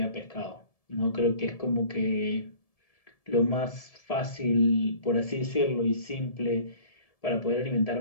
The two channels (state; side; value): late; right; 1.7 ms